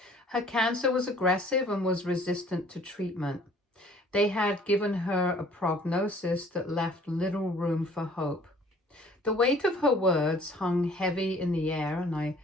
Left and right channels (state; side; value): normal; both; correlation 0.54